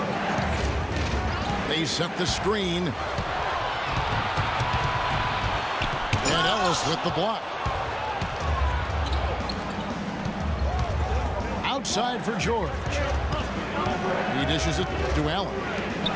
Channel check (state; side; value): identical; both; correlation 1.00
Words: They set the screen. And Ellis with the block. Outside for George. He dishes it to Allen.